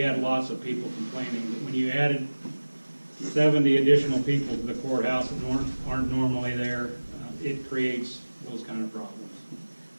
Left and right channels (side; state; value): both; inverted; correlation -1.00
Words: had lots of people complaining. But when you added 70 additional people to the courthouse that aren't normally there, it creates those kind of problems.